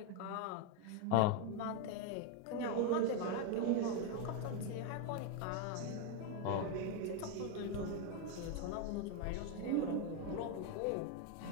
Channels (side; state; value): both; different; correlation 0.01